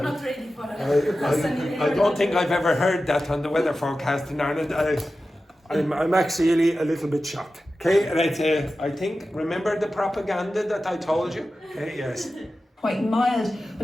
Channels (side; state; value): both; normal; correlation 0.93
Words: not ready for it. I don't think I've ever heard that on the weather forecast in Ireland. I'm actually a little bit shocked. Okay, and I think, remember the propaganda that I told you? Okay, yes. quite mild,